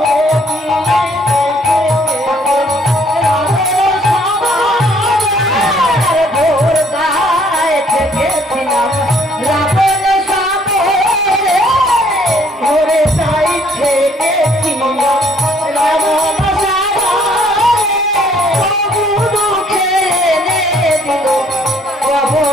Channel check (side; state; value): both; normal; correlation 0.62